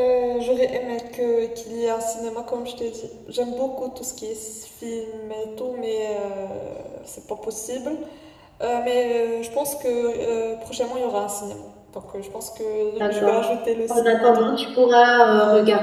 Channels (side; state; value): both; identical; correlation 1.00